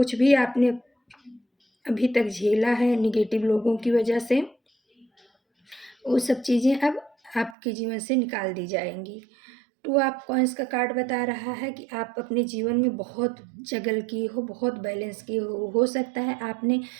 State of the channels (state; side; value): drops out; left; at 7.6 s